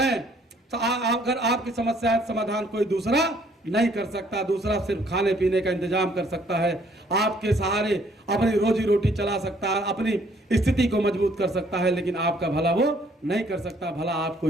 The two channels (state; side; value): normal; both; correlation 0.63